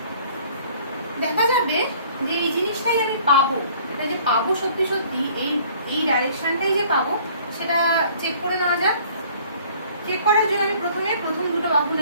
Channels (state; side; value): inverted; both; correlation -0.54